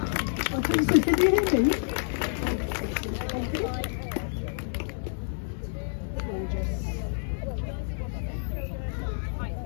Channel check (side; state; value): right; silent; digital silence